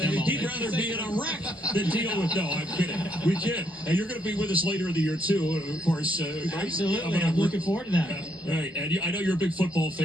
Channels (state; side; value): normal; both; correlation 0.73